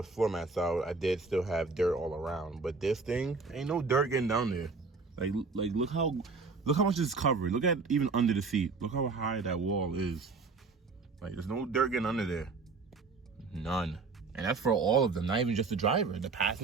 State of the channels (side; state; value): left; quieter; 4.3 dB